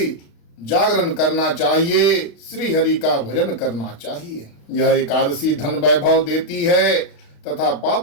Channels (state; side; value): late; right; 36 ms